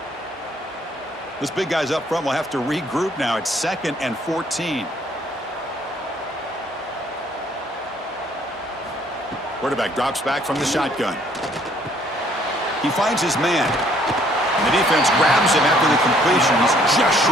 This big guy's up front will have to regroup now. It's 2nd and 14. Quarterback drops back from the shotgun. He finds his man. And the defense grabs him after the completion. He's just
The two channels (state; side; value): normal; both; correlation 0.63